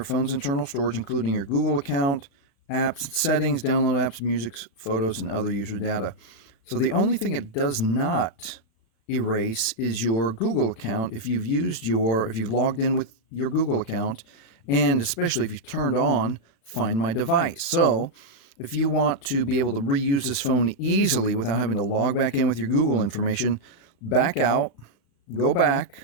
phone's internal storage, including your Google account, apps, settings, download apps, music, photos, and other user data. So the only thing it does not erase is your Google account if you've logged in with your Google account, and especially if you've turned on Find My Device. So if you want to be able to reuse this phone easily without having to log back in with your Google information, back out, go back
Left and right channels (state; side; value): late; right; 36 ms